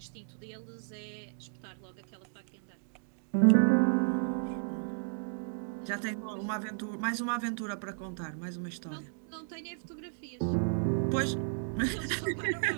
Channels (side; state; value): left; silent; digital silence